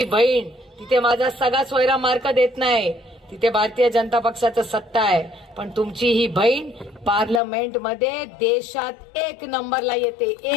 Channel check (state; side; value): drops out; right; at 7.4 s